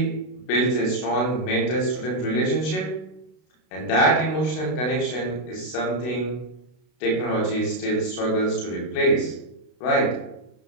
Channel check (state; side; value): late; right; 32 ms